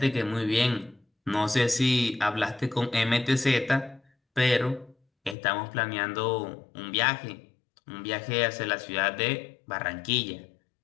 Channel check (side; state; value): right; drops out; at 5.4 s